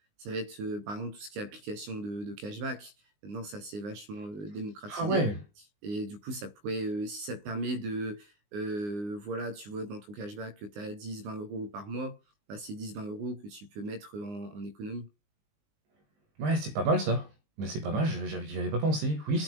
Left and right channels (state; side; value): late; left; 19 ms